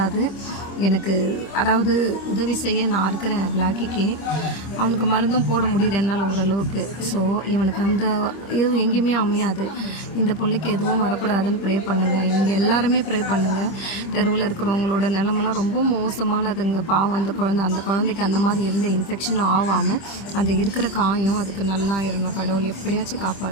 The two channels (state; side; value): late; right; 25 ms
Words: எனக்கு அதாவது உதவி செய்ய நான் இருக்கிறேன் பிளாக்கிக்கு. அவனுக்கு மருந்தும் போட முடியுது என்னால் ஓரளவுக்கு. ஸோ இவனுக்கு அந்த இதுவும் எங்கேயுமே அமையாது. இந்த பிள்ளைக்கு எதுவும் வரக்கூடாதுன்னு ப்ரே பண்ணுங்கள். நீங்கள் எல்லாருமே ப்ரே பண்ணுங்கள். தெருவில் இருக்கிறவங்களோட நிலமெல்லாம் ரொம்ப மோசமானதுங்க. பாவம் அந்த குழந்தைக்கு அந்த மாதிரி எந்த இன்ஃபெக்ஷனும் ஆகாமல் அந்த இருக்கிற காயம் அதுக்கு நல்லா இருணும். கடவுள் எப்படியாச்சும்